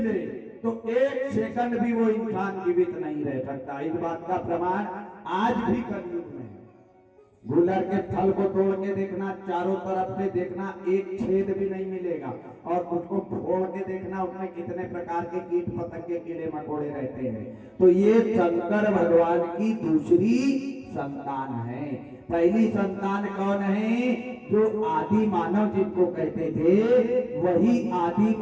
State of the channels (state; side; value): identical; both; correlation 1.00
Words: ले तो 1 सेकंड भी वो इंसान जीवित नहीं रह सकता। इस बात का प्रमाण आज भी कलयुग में है। गुलर के फल को तोड़ के देखना, चारों तरफ से देखना, एक छेद भी नहीं मिलेगा, और उसको फोड़ के देखना, उसमें कितने प्रकार के कीट पतंगे कीड़े मकोड़े रहते हैं। तो ये शंकर भगवान की दूसरी संतान है। पहली संतान कौन है? जो आदि मानव जिनको कहते थे, वही आदि